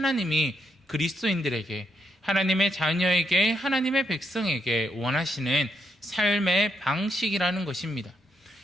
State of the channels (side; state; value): both; normal; correlation 0.78